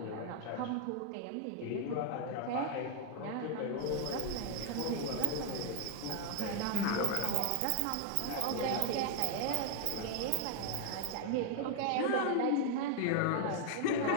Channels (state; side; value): different; both; correlation 0.00